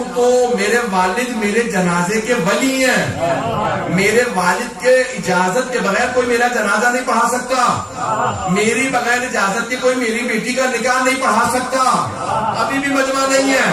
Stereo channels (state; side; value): identical; both; correlation 1.00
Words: تو میرے والد میرے جنازے کے ولی ہیں. میرے والد کے اجازت کے بغیر کوئی میرا جنازہ نہیں پڑھا سکتا. میری بغیر اجازت کے کوئی میری بیٹی کا نکاح نہیں پڑھا سکتا. ابھی بھی مجمع نہیں ہے.